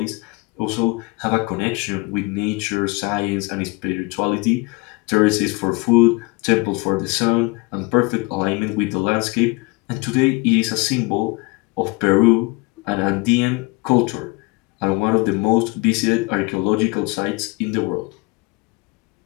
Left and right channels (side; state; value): right; quieter; 25.2 dB